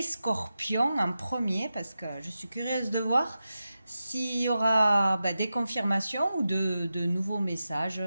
scorpions en premier parce que je suis curieuse de voir s'il y aura des confirmations ou de nouveaux messages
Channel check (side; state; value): both; inverted; correlation -0.91